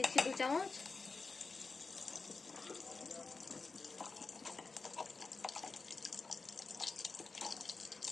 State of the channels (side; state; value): right; quieter; 4.1 dB